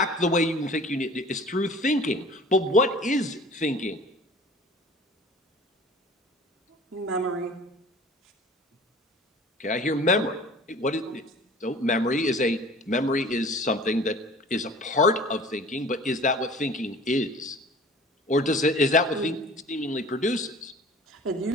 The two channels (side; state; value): both; normal; correlation 0.45